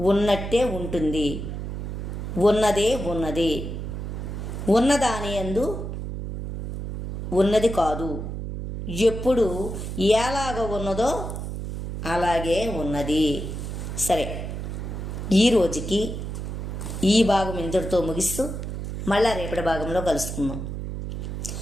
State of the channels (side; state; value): right; noise; hum, 6 dB below the sound